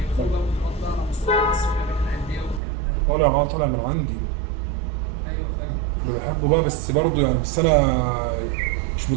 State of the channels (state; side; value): drops out; left; at 2.6 s